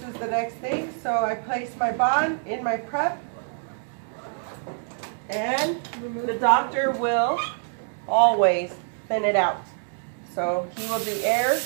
is the next thing, so I place my bond in my prep. And the doctor will always thin it out. So he will do air.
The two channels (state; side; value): silent; left; digital silence